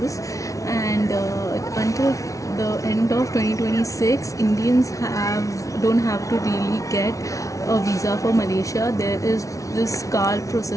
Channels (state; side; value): late; right; 0.16 ms